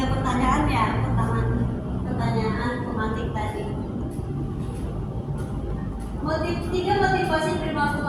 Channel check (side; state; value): both; identical; correlation 1.00